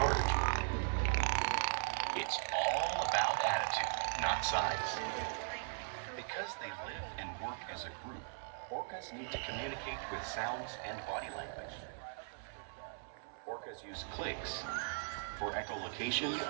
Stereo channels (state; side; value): silent; left; 52 dB below the other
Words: It's all about attitude, not size. Because they live and work as a group, orcas need to communicate with sounds and body language. Orcas use clicks for echolocation